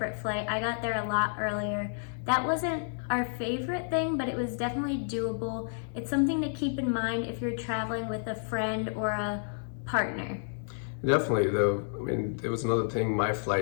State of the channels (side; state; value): right; silent; 58 dB below the other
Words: flight. I got there a lot earlier. That wasn't our favorite thing, but it was definitely doable. It's something to keep in mind if you're traveling with a friend or a partner. Definitely, though. I mean, there was another thing. My